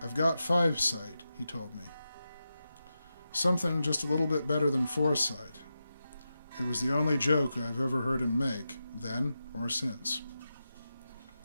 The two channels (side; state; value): both; inverted; correlation -0.90